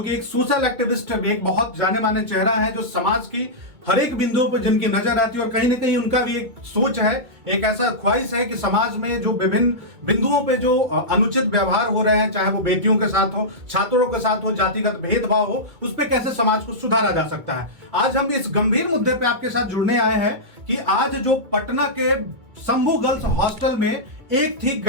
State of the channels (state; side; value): late; left; 2.2 ms